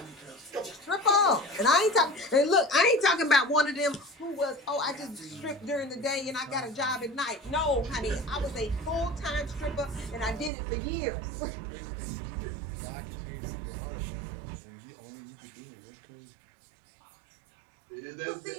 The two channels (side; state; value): left; drops out; at 10.5 s